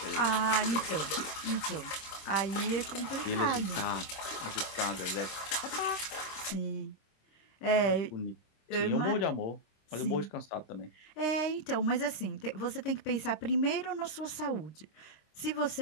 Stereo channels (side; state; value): right; late; 26 ms